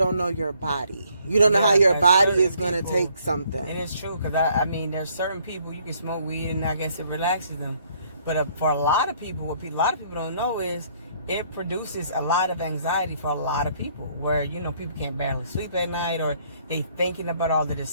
know your body. You don't know how your body is going to take something. It is true, because I mean, there's certain people you can smoke weed and I guess it relaxes them. But for a lot of people, what a lot of people don't know is it produces a lot of anxiety for a lot of people, where, people can't barely sleep at night, or they thinking about all of this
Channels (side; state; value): both; inverted; correlation -0.65